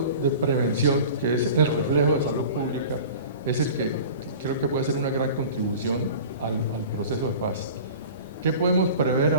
de prevención, que es el reflejo de salud pública, es el que creo que puede ser una gran contribución al proceso de paz. ¿Qué podemos prever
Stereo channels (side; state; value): both; inverted; correlation -0.39